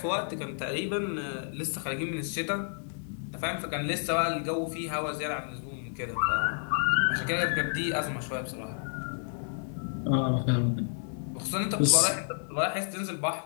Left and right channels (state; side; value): silent; right; digital silence